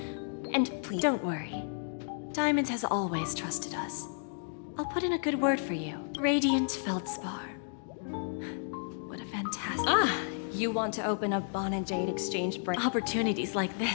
And please... Don't worry. Diamond has always trusted us. I'll put in a good word for you. Radiant Feldspar. What a fantastic... You want to open a Bon and Jade exchange branch? Opportunities like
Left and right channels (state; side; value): silent; right; digital silence